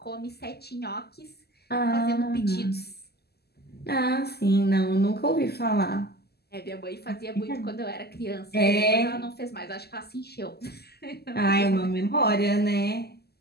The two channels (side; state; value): right; late; 0.46 ms